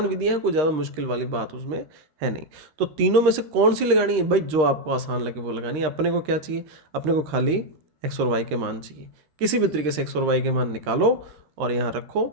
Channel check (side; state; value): left; late; 13 ms